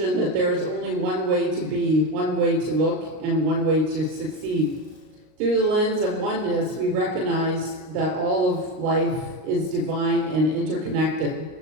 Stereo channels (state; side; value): late; left; 38 ms